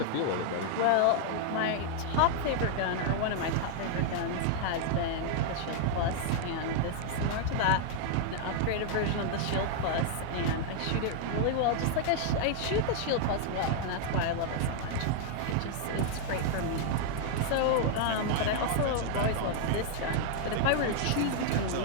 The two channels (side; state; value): both; different; correlation 0.00